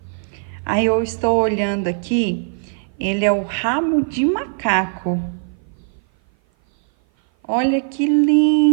Aí eu estou olhando aqui, ele é o rabo de macaco. Olha que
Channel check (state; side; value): silent; left; 56 dB below the other